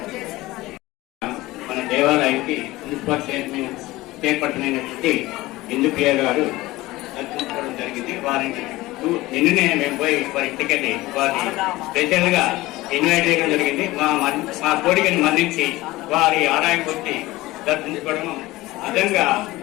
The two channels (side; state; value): right; quieter; 18.8 dB